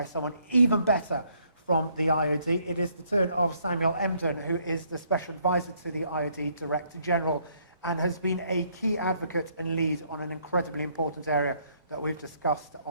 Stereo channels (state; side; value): inverted; both; correlation -0.68